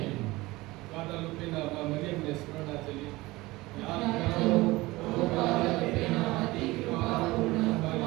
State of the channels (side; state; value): left; quieter; 20.4 dB